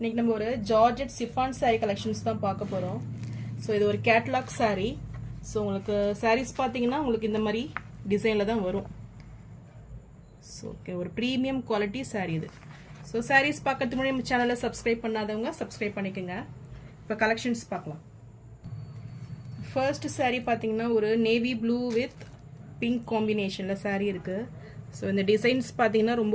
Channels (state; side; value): identical; both; correlation 1.00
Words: நம்ம ஒரு ஜார்ஜெட் சிஃபான் saree collections தான் பார்க்க போறோம். ஸோ இது ஒரு catalog saree. ஸோ உங்களுக்கு sarees பார்த்தீங்கன்னா உங்களுக்கு இந்த மாதிரி டிசைனில் தான் வரும். ஸோ ஓகே, ஒரு ப்ரீமியம் குவாலிட்டி saree இது. ஸோ sarees பார்க்கறதுக்கு முன்னாடி நம்ம சேனலை சப்ஸ்கிரைப் பண்ணாதவங்க சப்ஸ்கிரைப் பண்ணிக்கோங்க. இப்போ கலெக்ஷன்ஸ் பார்க்கலாம். ஃபர்ஸ்ட் saree பார்த்தீங்கன்னா ஒரு நேவி ப்ளூ வித் பிங்க் காம்பினேஷனில் saree இருக்குது. ஸோ இந்த டிசைன்ஸ் பார்த்தீங்கன்னா